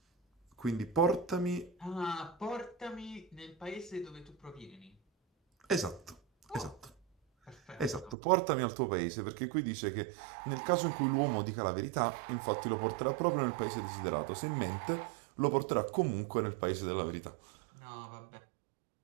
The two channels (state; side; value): drops out; left; at 8.2 s